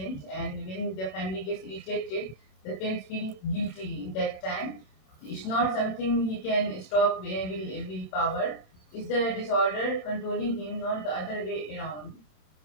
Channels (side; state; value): right; late; 27 ms